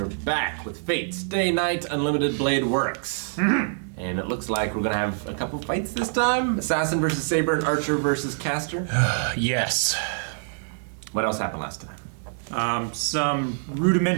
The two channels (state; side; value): silent; left; digital silence